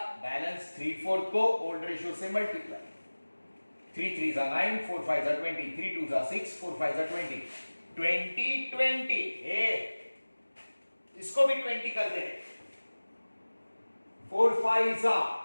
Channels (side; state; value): both; inverted; correlation -1.00